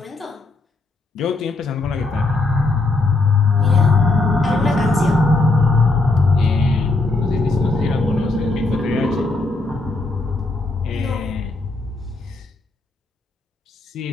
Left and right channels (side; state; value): right; quieter; 3.2 dB